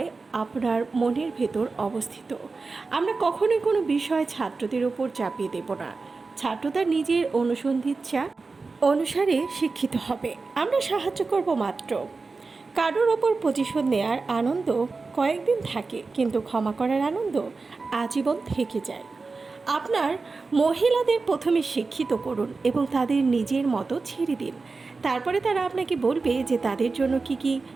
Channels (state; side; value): quieter; left; 4.1 dB